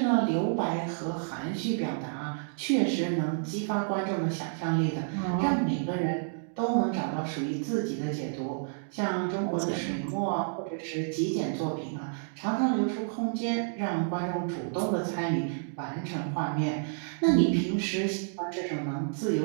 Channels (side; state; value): left; silent; digital silence